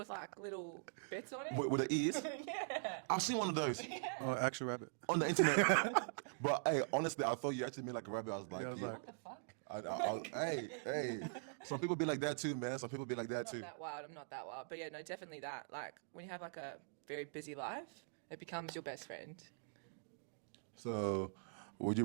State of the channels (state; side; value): silent; left; digital silence